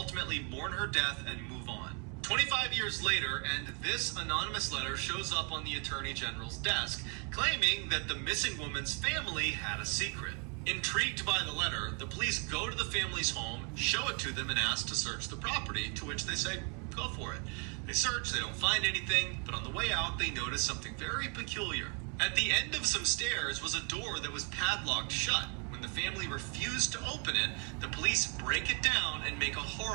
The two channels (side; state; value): left; quieter; 36.4 dB